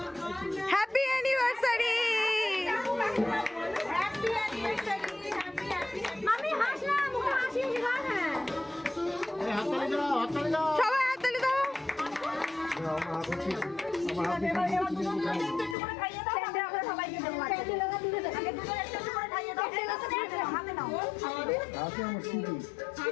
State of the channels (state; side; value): drops out; right; at 15.8 s